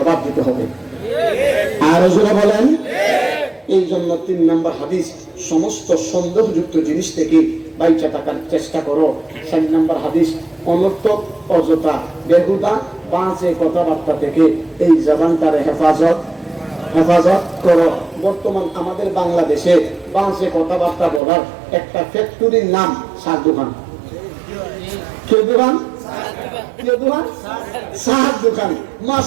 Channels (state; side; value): drops out; left; at 21.2 s